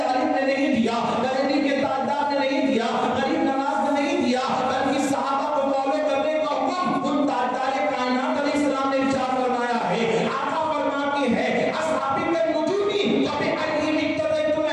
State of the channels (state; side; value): identical; both; correlation 1.00